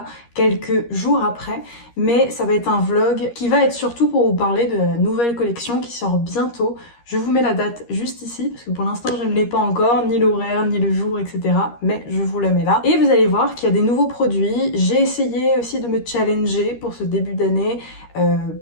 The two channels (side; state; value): right; late; 13 ms